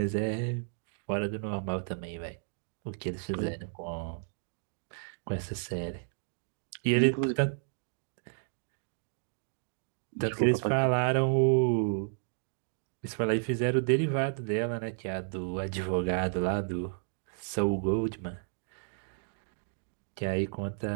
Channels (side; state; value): left; silent; digital silence